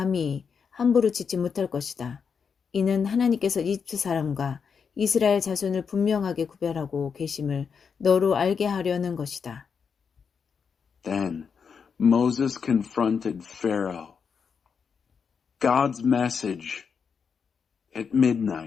함부로 짓지 못할 것이다. 이는 하나님께서 이집트 사람과 이스라엘 자손을 분명하게 구별하고 계심을 너로 알게 하려는 것이다. Then Moses confronted Pharaoh. God's message. At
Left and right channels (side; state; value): right; quieter; 6.3 dB